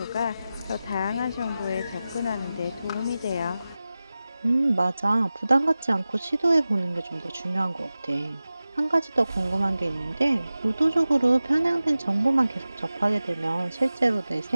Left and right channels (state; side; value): inverted; both; correlation -0.95